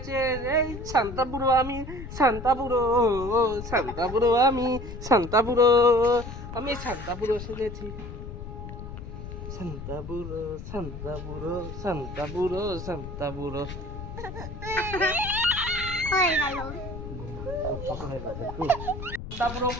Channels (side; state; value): left; noise; rumble, 9 dB below the sound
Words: এই শান্তাপুরো আমি, শান্তাপুরো শান্তাপুরো আমি, শান্তাপুরো আমি শান্তাপুরো সেজেছি। শান্তাপুরো শান্তাপুরো শান্তাপুরো শান্তাপুরো হয়ে গেল। শান্তাপুরো